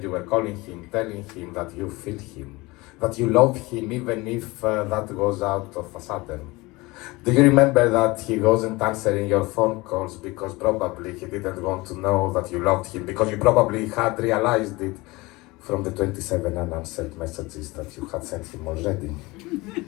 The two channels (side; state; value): right; quieter; 22.5 dB